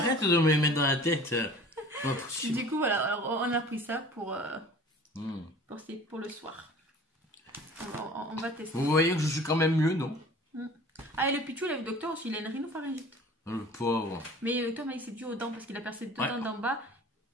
de me les mettre dans la tête. Du coup, voilà. Alors, on a pris ça pour le soir. On va tester. Vous voyez que je suis quand même mieux, non? Ah, et le Pichou, le docteur aussi, il a une rhinopharyngite. Le pauvre. Mais le docteur m'a dit que c'est dû aux dents parce qu'il a percé 2 dents d'en bas,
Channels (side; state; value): both; normal; correlation 0.45